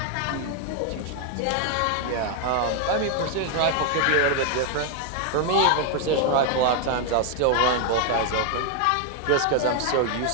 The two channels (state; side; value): different; both; correlation 0.01